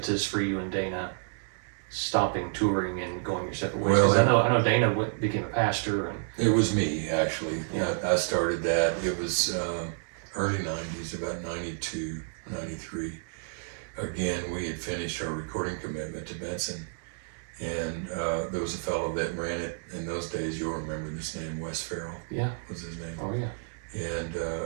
for you and Dana stopping touring and going your separate ways? Because I know Dana became a pastor, and it was me actually. Yeah. I started that. It was early 90s, about 92, 93. Again, we had finished our recording commitment to Benson, and there was a fellow that ran it in those days. You'll remember this name, Wes Farrell. Yeah, was his name. Oh yeah. And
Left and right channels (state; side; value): silent; left; digital silence